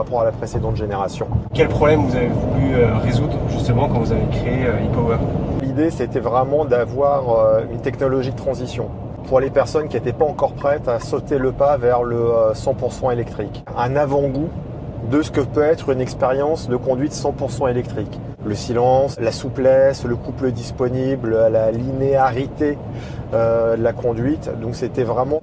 à la précédente génération. Quel problème vous avez voulu résoudre justement quand vous avez créé e-Power? L'idée, c'était vraiment d'avoir une technologie de transition pour les personnes qui n'étaient pas encore prêtes à sauter le pas vers le 100% électrique. Un avant-goût de ce que peut être une expérience de conduite 100% électrique. Le silence, la souplesse, le couple disponible, la linéarité de la conduite. Donc c'était vraiment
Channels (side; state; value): both; identical; correlation 1.00